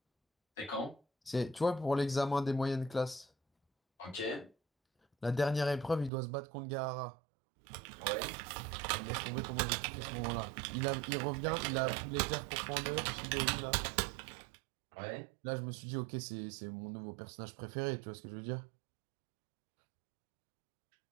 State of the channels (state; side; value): drops out; left; at 6.1 s